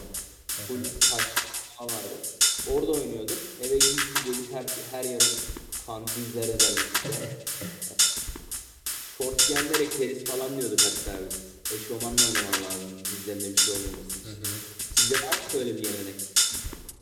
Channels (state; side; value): identical; both; correlation 1.00